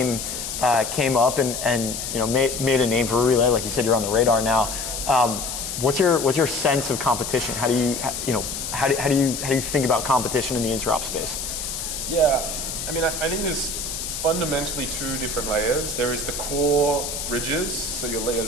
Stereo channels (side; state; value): left; noise; hiss, 5 dB below the sound